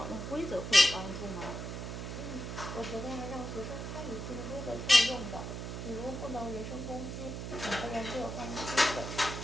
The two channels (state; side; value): noise; right; hum, 6 dB below the sound